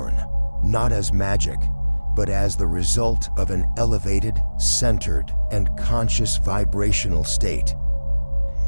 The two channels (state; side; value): inverted; both; correlation -1.00